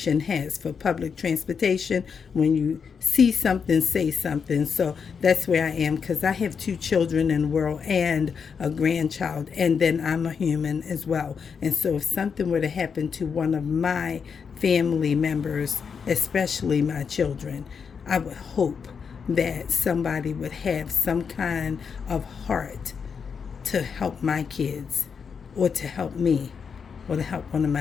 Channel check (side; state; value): right; quieter; 6.2 dB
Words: has for public transportation. When you see something, say something. So that's where I am, because I have 2 children in the world and a grandchild, and then I'm a human as well. And so if something were to happen to one of my family members, especially my children, I would hope that somebody would have some kind of heart to help my kids or to help me or to help one of my